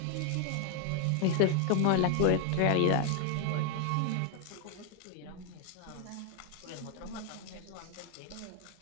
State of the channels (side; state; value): both; different; correlation 0.00